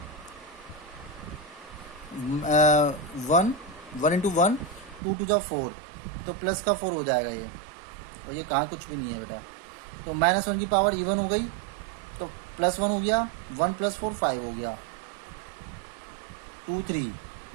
1 × 1 2 2 4, तो प्लस का 4 हो जाएगा ये, और ये कहाँ कुछ भी नहीं है बेटा। तो -1 की पावर इवन हो गई, तो +1 हो गया, 1 + 4 5 हो गया, 2 3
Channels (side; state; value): left; drops out; at 5.0 s